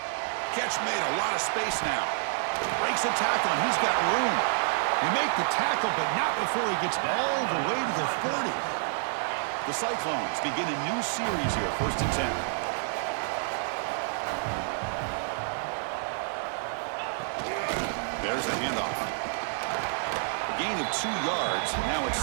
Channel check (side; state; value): left; silent; digital silence